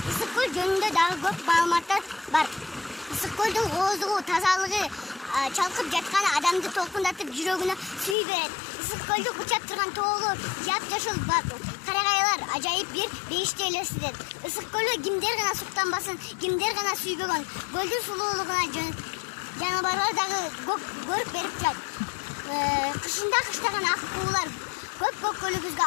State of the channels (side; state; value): right; drops out; at 8.2 s